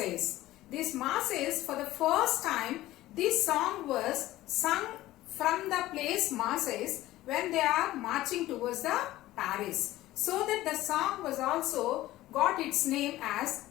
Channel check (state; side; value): quieter; right; 16.1 dB